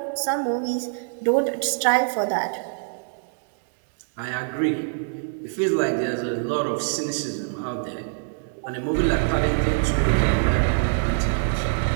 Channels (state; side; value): silent; left; digital silence